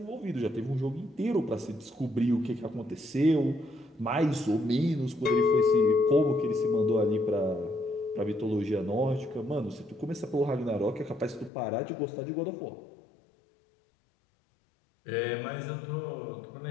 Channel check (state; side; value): drops out; right; at 11.5 s